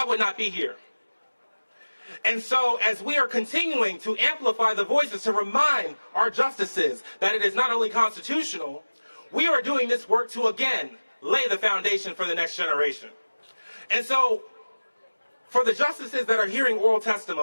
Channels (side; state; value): both; inverted; correlation -1.00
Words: would not be here. And so, as we are continuing to amplify the voices to remind our justices that it is not only constitutional, we are doing this work to, again, lay the foundation for the next generation. And so, for the justices that are hearing oral